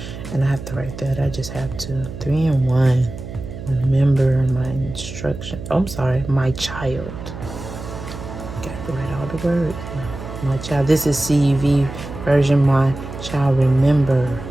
And I have to write that. I just have to. 3 and 1. Remember my instruction. Oh, I'm sorry. My child. Got to write all the words. My child. This is CEV version. My child, remember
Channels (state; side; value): noise; right; hum, 10 dB below the sound